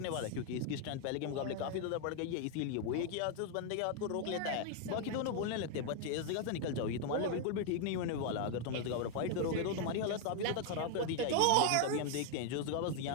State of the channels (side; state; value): both; different; correlation 0.00